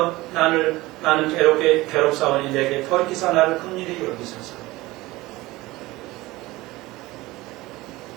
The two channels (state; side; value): quieter; left; 19.5 dB